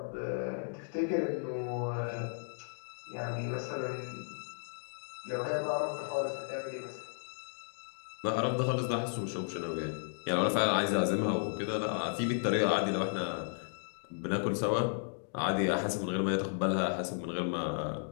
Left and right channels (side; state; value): right; silent; digital silence